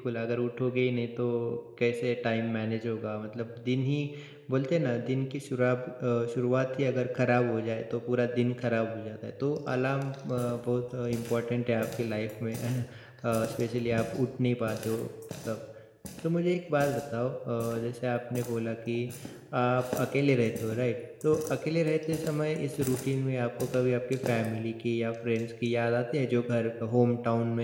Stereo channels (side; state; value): both; identical; correlation 1.00